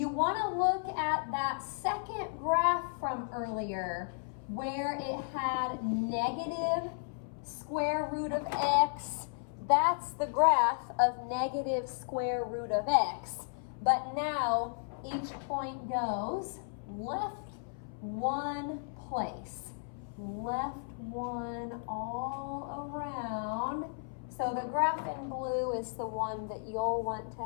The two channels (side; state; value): right; silent; 55 dB below the other